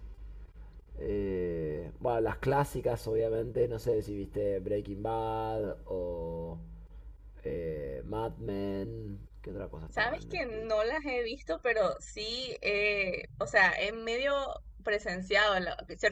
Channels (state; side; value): identical; both; correlation 1.00